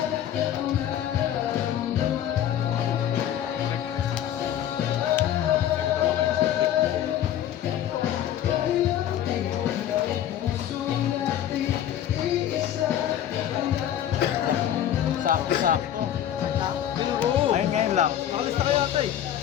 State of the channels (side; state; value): right; quieter; 10.8 dB